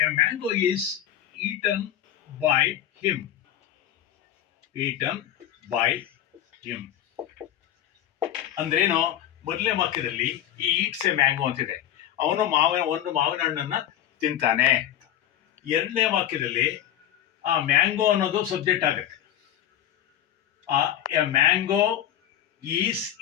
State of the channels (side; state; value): right; quieter; 11.4 dB